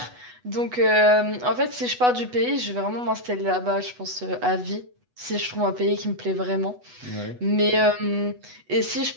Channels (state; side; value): late; left; 8.1 ms